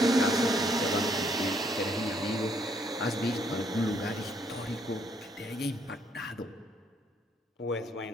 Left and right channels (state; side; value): normal; both; correlation 0.69